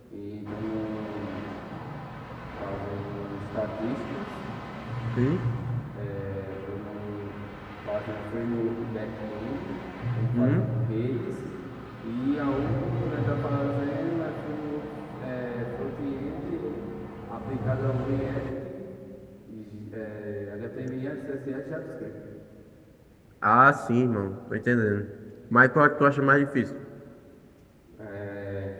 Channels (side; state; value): both; identical; correlation 1.00